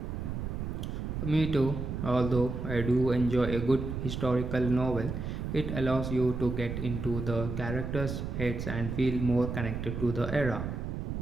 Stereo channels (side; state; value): right; noise; rumble, 4 dB below the sound